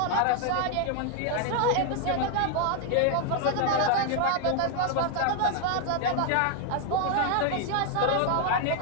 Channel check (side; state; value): both; different; correlation 0.00